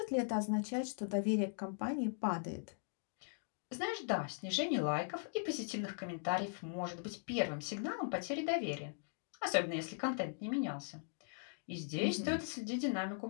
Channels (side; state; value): right; silent; digital silence